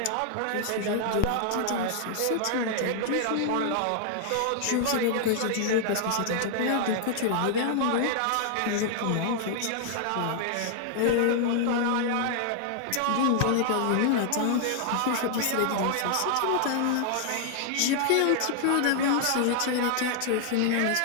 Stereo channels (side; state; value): both; different; correlation 0.00